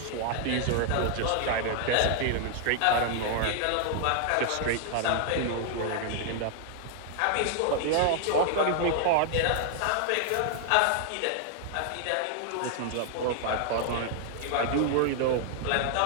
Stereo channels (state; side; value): different; both; correlation 0.00